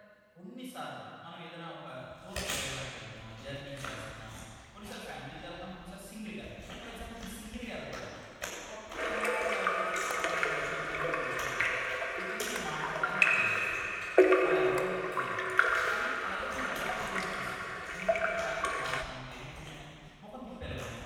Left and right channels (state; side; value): identical; both; correlation 1.00